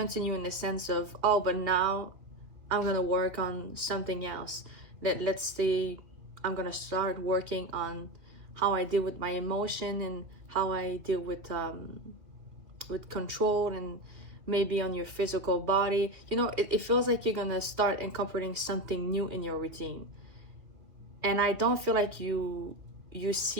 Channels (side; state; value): left; late; 2.8 ms